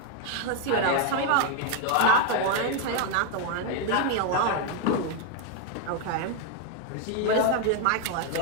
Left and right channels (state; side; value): different; both; correlation 0.01